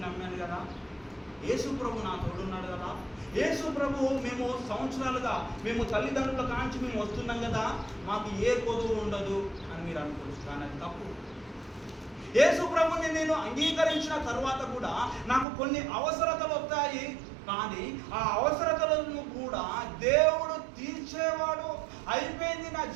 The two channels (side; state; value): left; drops out; at 15.5 s